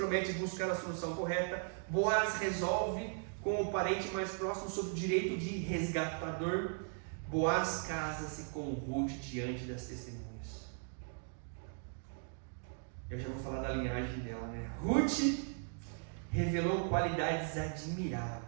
buscar a solução correta. Boaz resolve com o parente mais próximo sobre o direito de resgatador. Boaz casa-se com Ruth diante das testemunhas. Eu já vou falar da linhagem dela, né? Ruth revelou qualidades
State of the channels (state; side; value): silent; left; 53 dB below the other